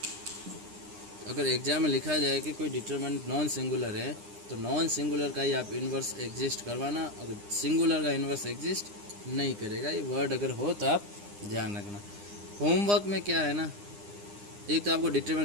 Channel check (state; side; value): late; left; 9.8 ms